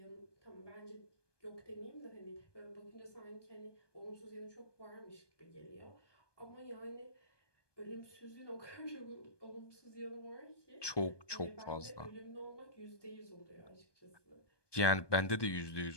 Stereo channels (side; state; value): right; late; 1.2 ms